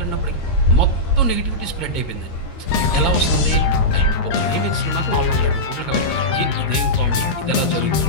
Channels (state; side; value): late; right; 13 ms